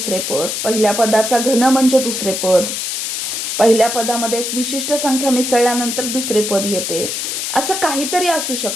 पद, पहिल्या पदाचा घन म्हणजे दुसरे पद, पहिल्या पदामध्ये एक विशिष्ट संख्या मिसळल्यानंतर दुसरे पद येते. असं काहीतरी असू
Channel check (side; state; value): left; noise; hiss, 3 dB below the sound